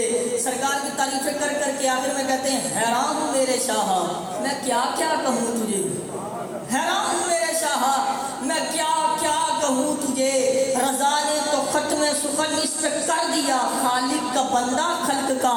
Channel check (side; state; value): both; identical; correlation 1.00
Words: سرکار کی تعریفیں کر کر کے آخر میں کہتے ہیں حیران ہوں میرے شاہ میں کیا کیا کہوں تجھے، حیران ہوں میرے شاہ میں کیا کیا کہوں تجھے. رضا نے تو ختم سخن اس پہ کر دیا، خالق کا بندہ خلق کا